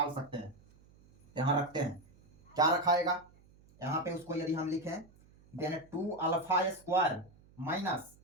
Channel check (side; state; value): right; noise; hum, 27 dB below the sound